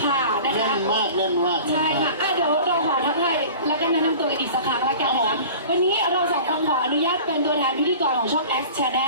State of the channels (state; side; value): inverted; both; correlation -0.41